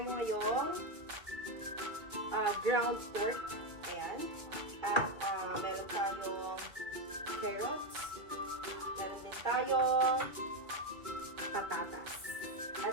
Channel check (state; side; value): late; left; 2.3 ms